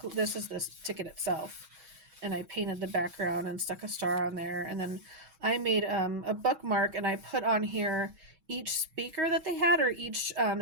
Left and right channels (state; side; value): late; left; 6.3 ms